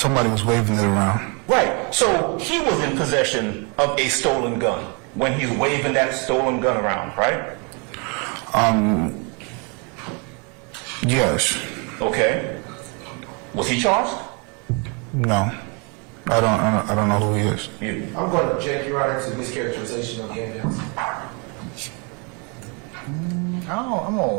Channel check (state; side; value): quieter; left; 33.6 dB